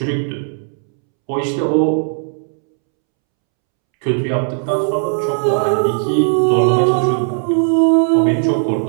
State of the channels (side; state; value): left; silent; 69 dB below the other